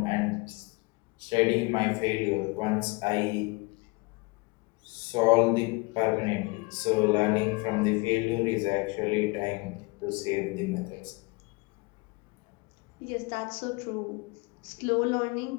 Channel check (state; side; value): quieter; right; 26.5 dB